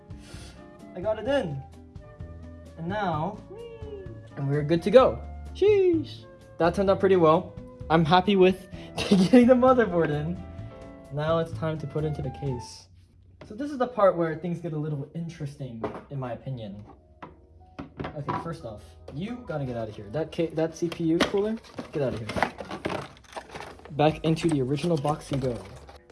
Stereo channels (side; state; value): both; identical; correlation 1.00